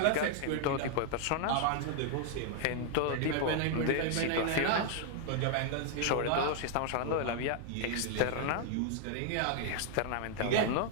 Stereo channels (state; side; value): different; both; correlation 0.00